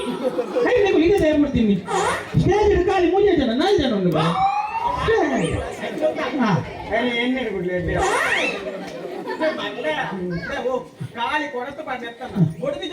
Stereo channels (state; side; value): identical; both; correlation 1.00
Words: ರೈಲ್ ಈಗ ತಯಾರು ಮಾಡ್ತೀನಿ ಸ್ಟೇಜ್ ಖಾಲಿ 3 ಜನ 4 ಜನ ಉಂಟು ಎಣ್ಣೆ ಬಿಡ್ಲಿ ಕಾಲಿ ಕೊಡತ ಹೊಡೆದಿ